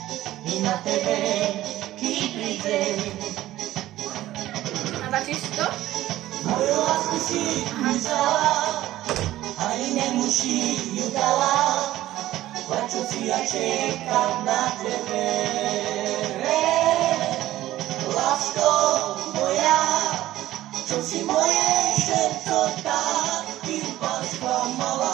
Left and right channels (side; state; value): left; quieter; 14.8 dB